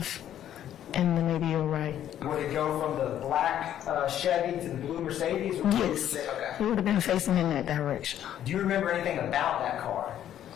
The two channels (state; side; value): quieter; right; 11.0 dB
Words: and then maybe your right. Would it go from the black Chevy to the blue Mercedes? Or Yes. Okay. It would have been facing in that direction. Do you remember anything about that car?